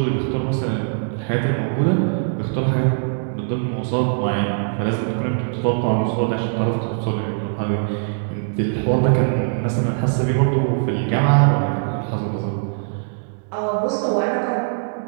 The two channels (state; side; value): silent; left; digital silence